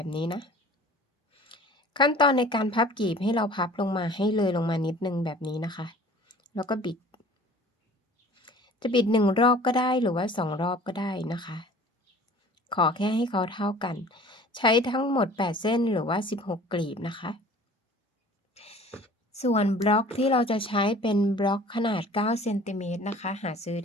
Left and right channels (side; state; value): both; normal; correlation 0.47